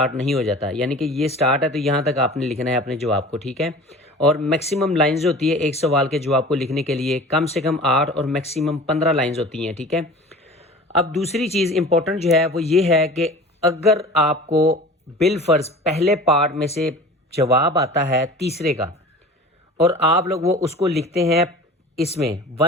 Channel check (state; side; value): normal; both; correlation 0.40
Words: नहीं हो जाता। यानी कि ये स्टार्ट है तो यहाँ तक आपने लिखना है अपने जवाब को। ठीक है, और मैक्सिमम लाइंस होती है एक सवाल के जवाब को लिखने के लिए, कम से कम 8 और मैक्सिमम 15 लाइंस होती हैं। ठीक है, अब दूसरी चीज़ इंपॉर्टेंट जो है वो ये है कि अगर आपको बिलफर्ज पहले पार्ट में से जवाब आता है तीसरे का और आप लोग वो उसको लिखते हैं इसमें